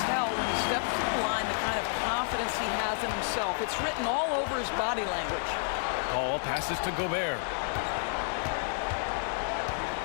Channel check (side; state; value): right; silent; digital silence